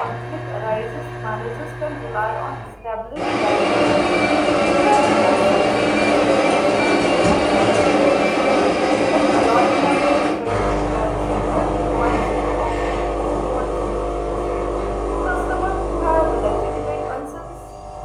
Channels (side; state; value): both; identical; correlation 1.00